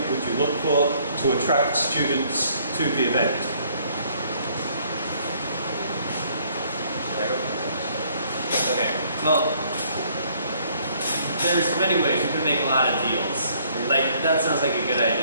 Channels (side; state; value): both; inverted; correlation -0.63